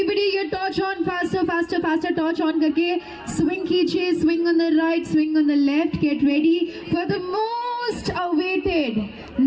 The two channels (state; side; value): identical; both; correlation 1.00